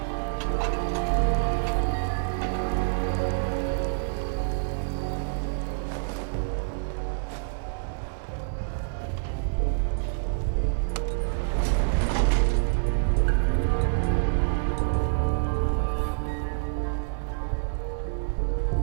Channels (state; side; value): silent; left; 60 dB below the other